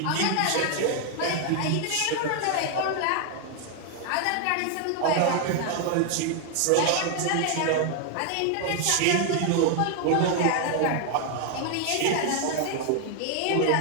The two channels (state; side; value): different; both; correlation 0.00